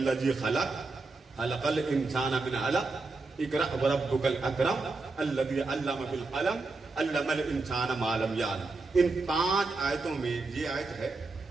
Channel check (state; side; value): quieter; left; 3.7 dB